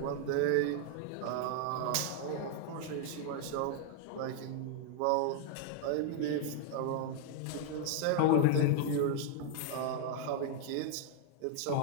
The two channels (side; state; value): both; different; correlation 0.00